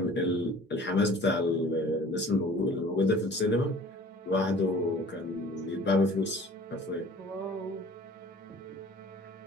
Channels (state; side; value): normal; both; correlation 0.48